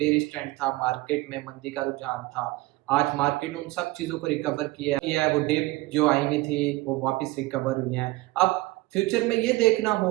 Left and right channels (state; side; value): quieter; left; 20.3 dB